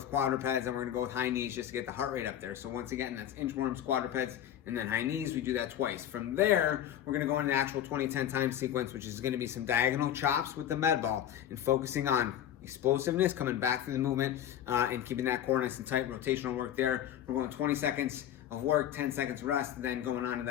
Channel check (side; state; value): right; quieter; 10.8 dB